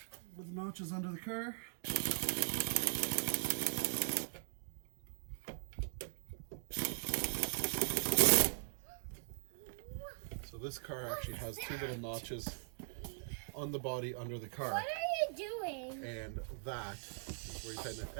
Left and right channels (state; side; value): silent; left; digital silence